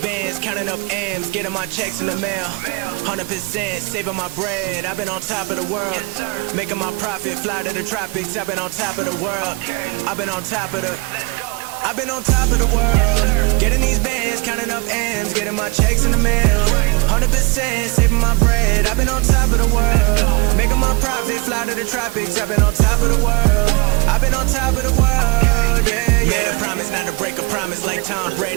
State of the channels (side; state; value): left; quieter; 25.6 dB